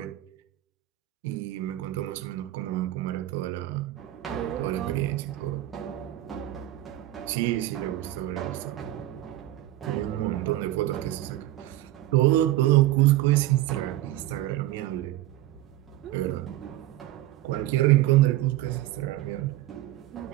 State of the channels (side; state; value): left; quieter; 15.1 dB